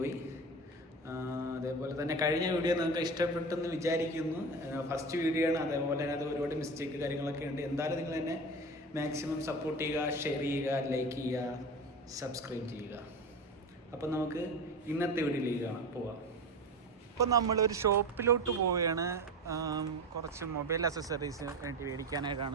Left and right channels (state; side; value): normal; both; correlation 0.27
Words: അതേപോലെ തന്നെ കഴിഞ്ഞ വീഡിയോ നിങ്ങൾക്ക് ഇഷ്ടപ്പെട്ടെന്ന് വിചാരിക്കുന്നു. ഫസ്റ്റ് വീഡിയോ ആണ്, അതേപോലെ തന്നെ അത് ഒരുപാട് മിസ്റ്റേക്ക് കാര്യങ്ങളൊക്കെ ഉണ്ട്. എന്തായാലും നിങ്ങൾ എന്നെ മാക്സിമം സപ്പോർട്ട് ചെയ്യുക, ഷെയർ ചെയ്യുക, ലൈക്ക് ചെയ്യുക, സബ്സ്ക്രൈബ് ചെയ്യുക. അപ്പം നമുക്ക് ഇന്നത്തെ വീഡിയോയിലേക്ക് പോവാം. ഇപ്പം നമ്മളൊരു ഷോപ്പിലോട്ട് പോവുകയാണ്. കുറച്ച് മൊബൈൽ അക്സസറീസ് വേണ്ടി